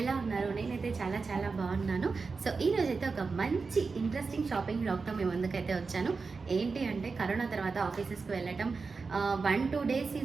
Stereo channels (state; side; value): quieter; left; 4.5 dB